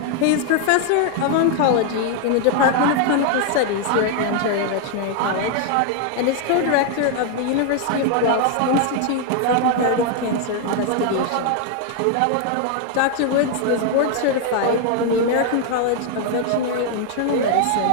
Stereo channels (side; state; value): both; different; correlation 0.00